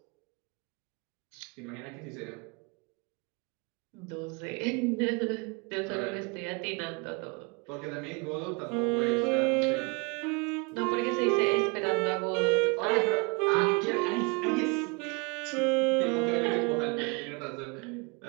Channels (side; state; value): left; quieter; 29.7 dB